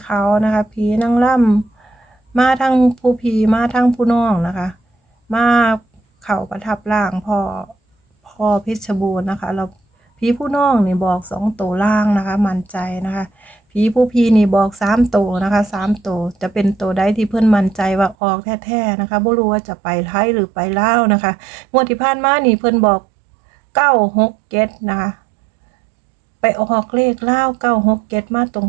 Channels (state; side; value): drops out; left; at 18.2 s